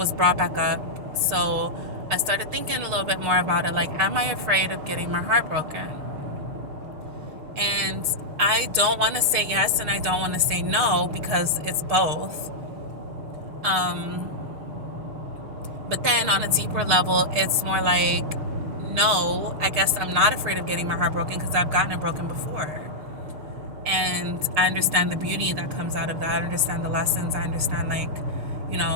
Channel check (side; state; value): left; late; 6.5 ms